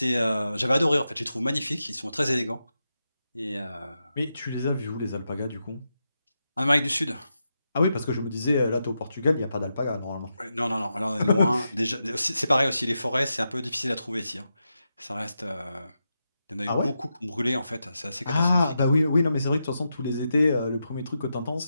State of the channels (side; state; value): both; inverted; correlation -0.87